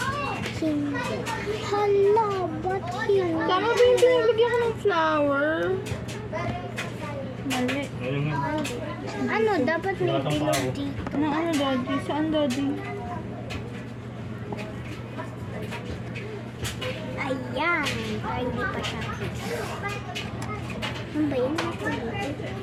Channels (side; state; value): both; identical; correlation 1.00